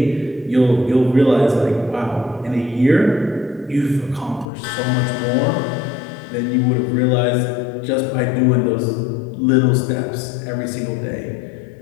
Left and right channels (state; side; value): drops out; right; at 4.5 s